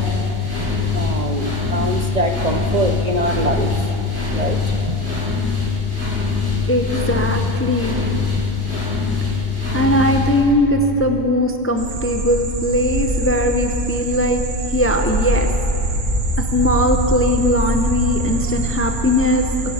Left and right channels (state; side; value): normal; both; correlation 0.24